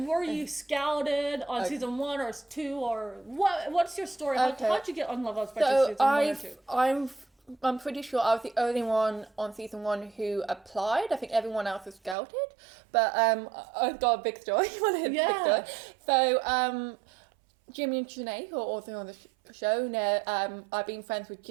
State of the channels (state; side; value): drops out; left; at 12.2 s